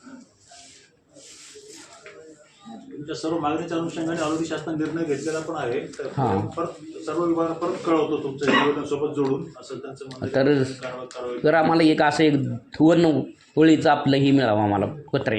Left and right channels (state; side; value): identical; both; correlation 1.00